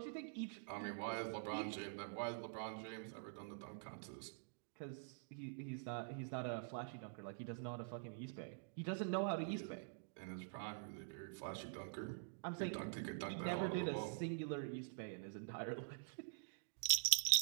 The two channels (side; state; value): left; silent; digital silence